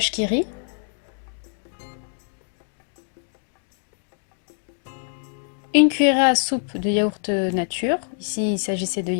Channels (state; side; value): silent; right; digital silence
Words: qui rit, une cuillerée à soupe de yaourt nature, ici il s'agissait de